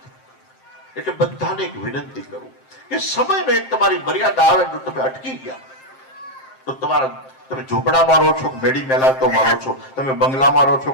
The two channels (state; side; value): late; right; 7.6 ms